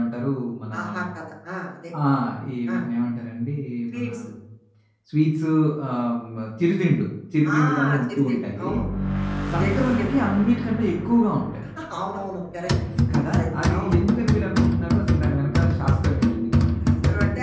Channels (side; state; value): both; identical; correlation 1.00